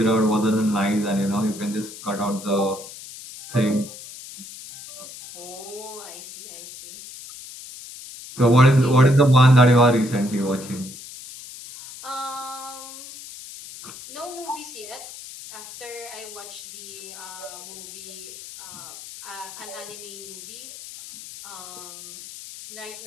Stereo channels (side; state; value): left; noise; hiss, 14 dB below the sound